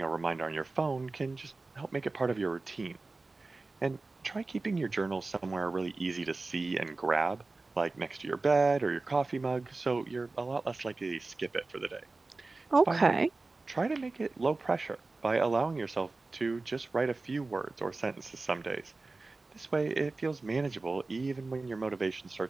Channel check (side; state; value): left; quieter; 3.5 dB